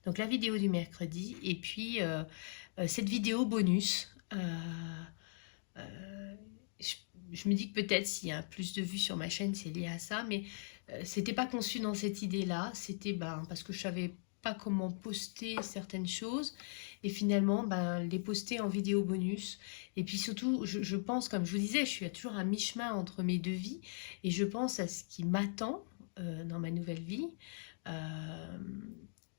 Donc, la vidéo du mercredi, et puis cette vidéo bonus. Je me dis que peut-être s'il y a plus de vues sur ma chaîne, c'est lié à ça, mais c'était pas conçu dans cette idée-là. C'était parce que je savais pas comment poster certaines choses et finalement les poster en vidéo bonus. Et puis surtout, je pense, comme je vous disais, je suis toujours à mi-chemin entre mes deux vies et je pense à ce qui m'attend dans ma nouvelle vie.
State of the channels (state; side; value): silent; right; digital silence